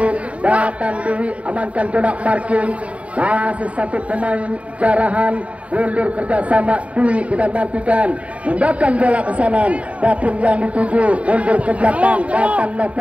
datang Dewi, amankan conak marking. Masih satu pemain Jarahan, mundur kerjasama Dwi. Kita nantikan tindakan bola ke sana, dapur yang dituju, mundur ke belakang, datang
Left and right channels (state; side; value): late; left; 0.065 ms